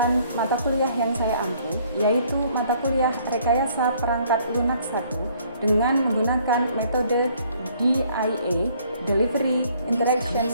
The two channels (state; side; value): inverted; both; correlation -0.62